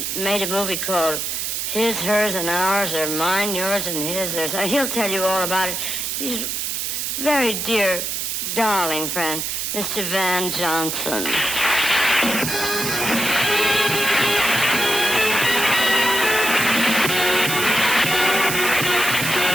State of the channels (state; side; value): noise; right; hiss, 2 dB below the sound